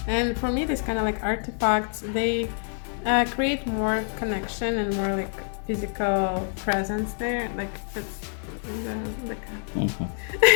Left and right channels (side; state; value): right; silent; 58 dB below the other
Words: And for me, this kind of like artifacts, they create more connection and more like physical presence there. Like that's the cat.